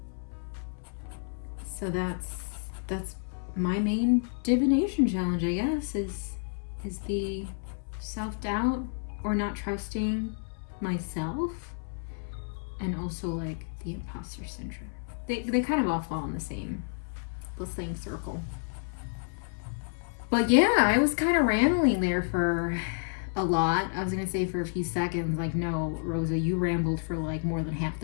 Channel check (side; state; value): right; silent; 58 dB below the other